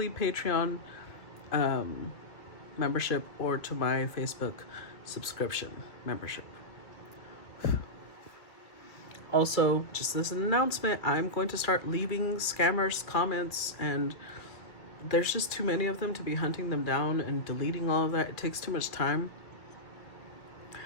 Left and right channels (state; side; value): late; right; 2.3 ms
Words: Patreon membership or to my Facebook subscription membership. Also, just as an announcement, I'm going to start leaving scammers comments, and there's just too many of them to be hunting them down and deleting all of that. It takes too much time.